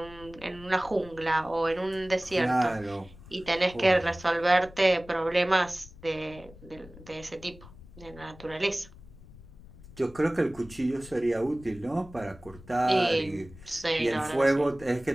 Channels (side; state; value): left; noise; rumble, 20 dB below the sound